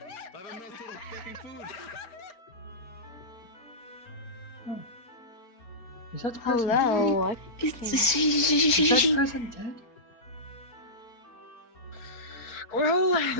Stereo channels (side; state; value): right; late; 4.4 ms